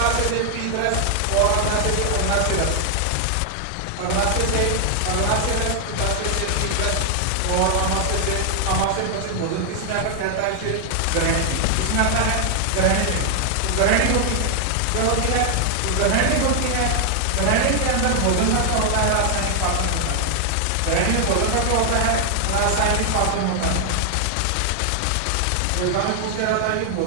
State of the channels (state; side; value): different; both; correlation 0.00